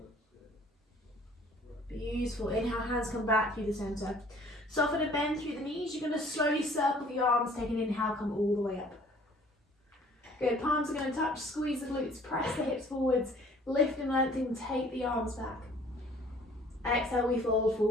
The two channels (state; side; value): normal; both; correlation 0.54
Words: Beautiful, inhale, hands come back through the center. Soften and bend through the knees. You're going to slowly circle the arms, take an inhale, come all the way up. Good, palms are going to touch, squeeze the glutes, press the hips forwards, lift and lengthen, take the arms back. Exhale, we fold